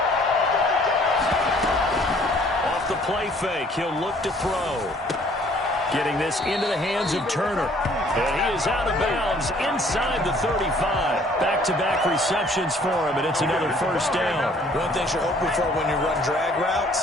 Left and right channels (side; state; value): both; normal; correlation 0.58